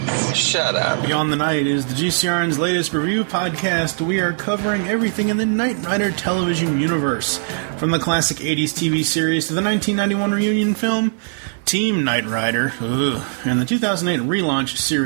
Shut up. Beyond the Night is the GCRN's latest review podcast. We are covering everything in the Knight Rider television universe, from the classic 80s TV series to the 1991 reunion film, Team Knight Rider, and the 2008 relaunch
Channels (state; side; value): silent; left; 59 dB below the other